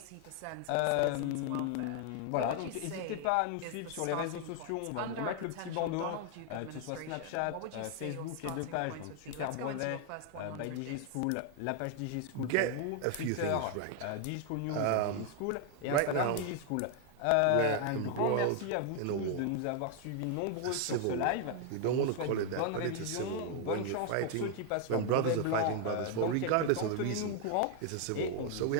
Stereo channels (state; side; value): different; both; correlation 0.00